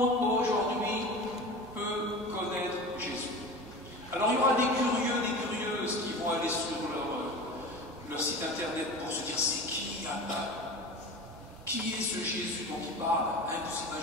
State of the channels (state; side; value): normal; both; correlation 0.33